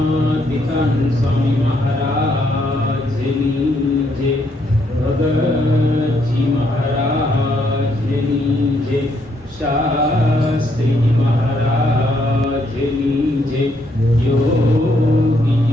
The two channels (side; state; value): both; normal; correlation 0.73